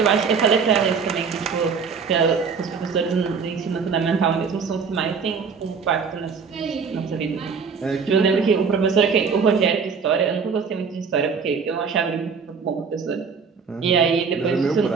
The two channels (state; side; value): quieter; left; 5.6 dB